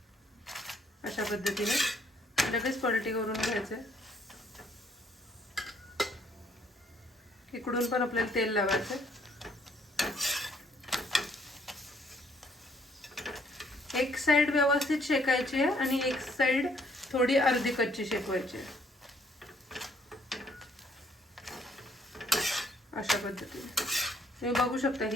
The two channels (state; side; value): normal; both; correlation 0.65